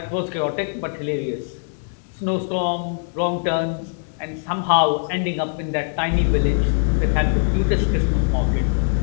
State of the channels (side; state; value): right; silent; digital silence